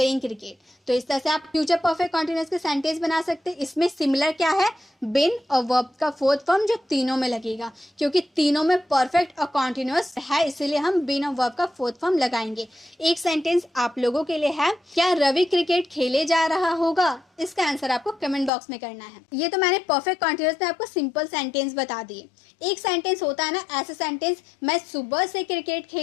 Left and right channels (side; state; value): right; drops out; at 18.5 s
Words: cricket. तो इस तरह से आप फ्यूचर परफेक्ट कॉन्टिन्यूअस के सेंटेंस बना सकते हैं। इसमें सिमिलर क्या है, बिन और वर्ब का फोर्थ फॉर्म, जो तीनों में लगेगा, क्योंकि तीनों में परफेक्ट और कॉन्टिन्यूअस है, इसीलिए हम बिन और वर्ब का फोर्थ फॉर्म लगाएंगे। एक सेंटेंस आप लोगों के लिए है, क्या रवि क्रिकेट खेले जा रहा होगा। इसका आंसर आपको कमेंट बॉक्स में करना है। ये तो मैंने परफेक्ट कॉन्टिन्यूअस में आपको सिंपल सेंटेंस बता दिए। एक सेंटेंस होता है ना ऐसा सेंटेंस, मैं सुबह से क्रिकेट